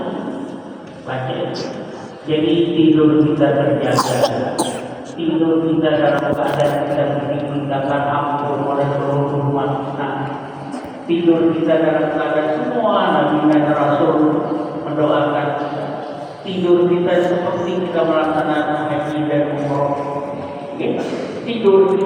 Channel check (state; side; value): identical; both; correlation 1.00